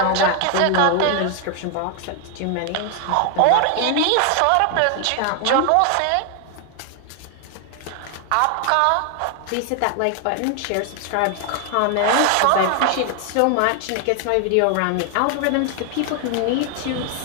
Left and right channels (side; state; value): both; different; correlation 0.00